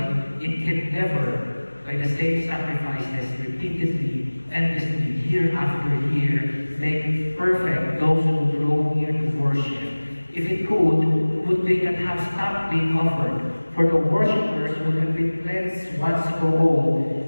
it can never, by the same sacrifices repeatedly, endlessly, year after year, make perfect those who draw near to worship. If it could, would they not have stopped being offered? For the worshippers would have been cleansed once for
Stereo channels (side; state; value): both; inverted; correlation -1.00